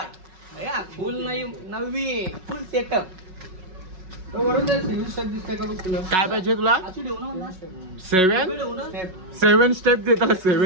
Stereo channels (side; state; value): left; late; 5.4 ms